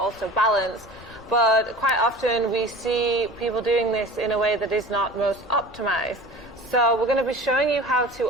balance. But quite often we see people doing this in a way that is not most optimized. So we're going to be showing you how to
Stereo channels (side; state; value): both; normal; correlation 0.39